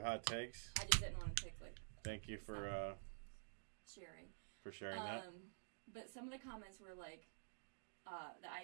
Takes. I just didn't want to take Thank you for sharing. that. But some of the comments were like that I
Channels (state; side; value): silent; left; digital silence